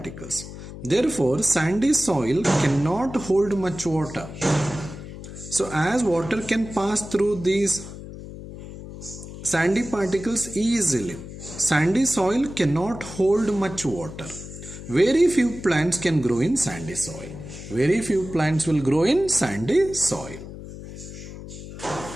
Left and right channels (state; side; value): noise; left; hum, 12 dB below the sound